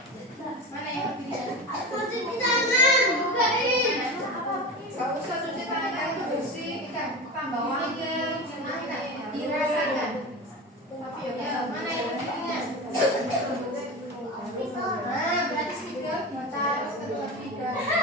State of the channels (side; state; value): both; normal; correlation 0.26